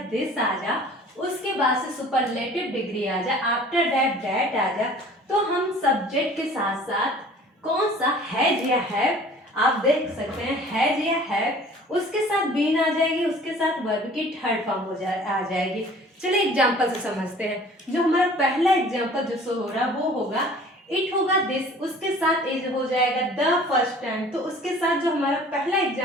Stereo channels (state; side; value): normal; both; correlation 0.49